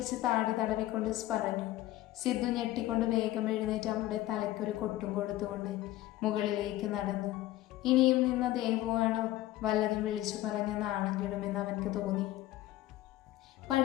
താടി തടവിക്കൊണ്ട് പറഞ്ഞു. സിദ്ധു ഞെട്ടിക്കൊണ്ട് വേഗം എഴുന്നേറ്റ് അവളുടെ തലയ്ക്കൊരു കൊട്ടും കൊടുത്തുകൊണ്ട് മുകളിലേക്ക് നടന്നു. ഇനിയും നിന്ന ദേവുവാണോ വല്ലതും വിളിച്ചു പറഞ്ഞ നാണം കെടുമെന്ന് അവൻക്ക് തോന്നി.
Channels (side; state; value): right; quieter; 15.6 dB